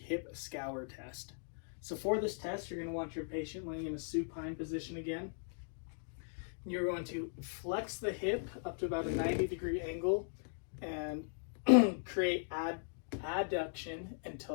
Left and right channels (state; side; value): silent; right; digital silence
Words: hip scour test. So for this test, you're going to want your patient laying in a supine position again. You're going to flex the hip up to about a 90-degree angle and create adduction